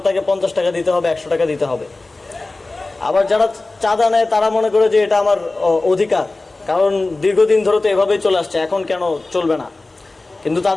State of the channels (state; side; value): quieter; right; 3.2 dB